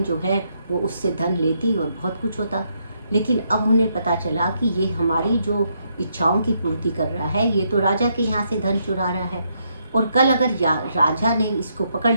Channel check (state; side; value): inverted; both; correlation -0.76